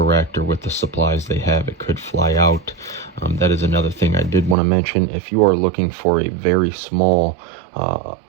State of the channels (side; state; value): left; drops out; at 4.5 s